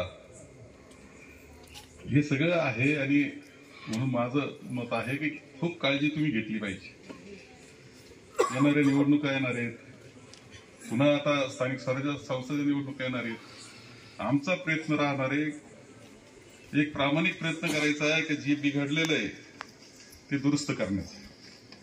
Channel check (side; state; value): both; identical; correlation 1.00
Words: हे सगळं आहे. आणि म्हणून माझं मत आहे की खूप काळजी तुम्ही घेतली पाहिजे. येणाऱ्या निवडणुका येणार आहेत, पुन्हा आता स्थानिक स्वराज्य संस्थेच्या निवडणुका येणार आहेत. आमचा प्रयत्न राहणार आहे, एक प्रामाणिक प्रयत्न करायचा आहे की जे बिघडलेलं आहे ते दुरुस्त करण्याचा.